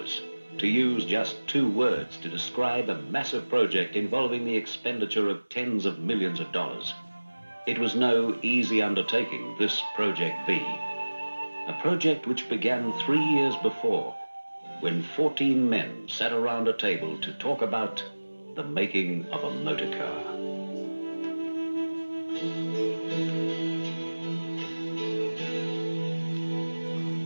to use just 2 words to describe a massive project involving the expenditure of tens of millions of dollars. It was no easy undertaking, this Project V. A project which began 3 years before, when 14 men sat around a table to talk about the making of a motor car.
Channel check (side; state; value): both; inverted; correlation -1.00